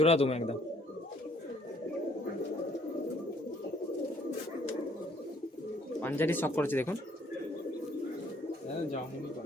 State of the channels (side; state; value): both; normal; correlation 0.62